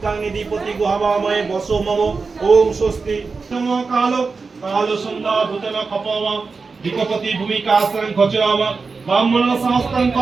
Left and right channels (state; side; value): quieter; left; 4.5 dB